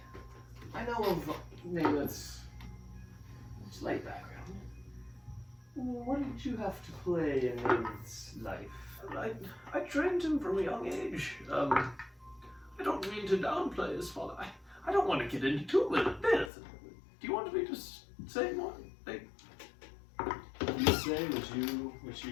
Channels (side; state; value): right; drops out; at 16.5 s